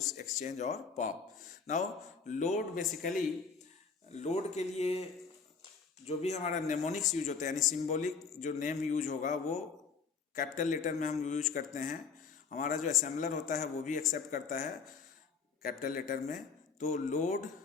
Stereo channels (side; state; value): right; quieter; 5.4 dB